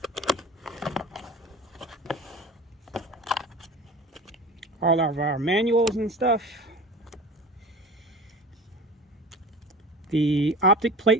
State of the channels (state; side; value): normal; both; correlation 0.36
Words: All of our manuals and stuff. The optic